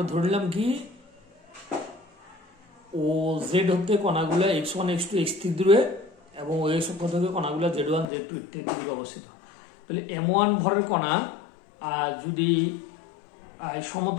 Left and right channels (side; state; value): right; drops out; at 8.1 s